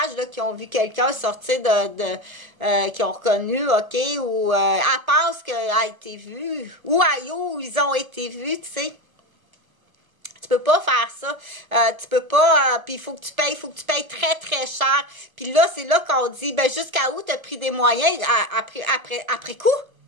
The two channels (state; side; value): late; left; 1.2 ms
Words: là, qui ont vu quelqu'un sortir qui ont reconnu, ok, ou elle pense qu'elle a été vue, ou où ils ont été vus, tu sais. Tu peux pas faire ça. Tu peux pas, puis il faut que tu payes très, très cher. Puis là, c'est là qu'on dit, ben, jusqu'à où t'as pris des moyens après coup?